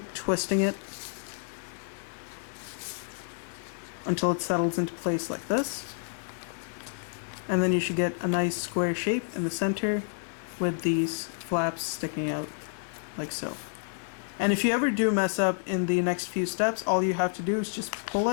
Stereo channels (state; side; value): silent; right; digital silence